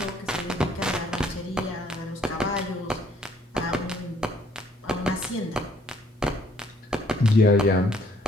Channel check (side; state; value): both; normal; correlation 0.64